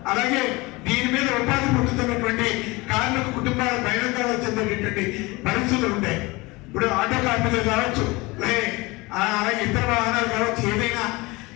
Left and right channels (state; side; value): quieter; right; 23.4 dB